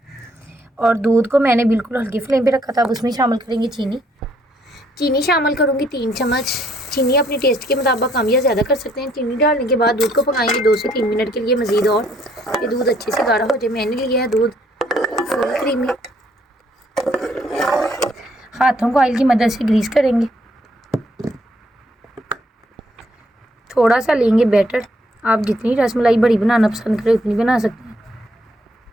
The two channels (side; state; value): both; normal; correlation 0.68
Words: और दूध को मैंने बिल्कुल हल्की फ्लेम पे रखा था। अब उसमें शामिल करेंगे चीनी शामिल करूँगी 3 चम्मच। चीनी अपने टेस्ट के मुताबिक कम या ज़्यादा कर सकते हैं। चीनी डालने के बाद दूध को पकाएंगे 2 से 3 मिनट के लिए मज़ीद, और ये दूध अच्छे से गाढ़ा हो जाए। मैंने लिया है दूध फुल क्रीमी। हाथों को ऑयल की मदद से ग्रीस करेंगे। थोड़ा सा लेंगे बैटर। आप जितनी रसमलाई बड़ी बनाना पसंद करें उतनी बना सकते हैं।